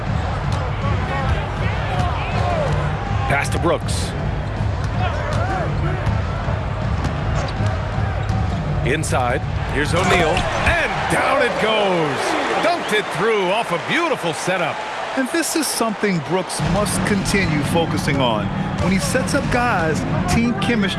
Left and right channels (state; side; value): identical; both; correlation 1.00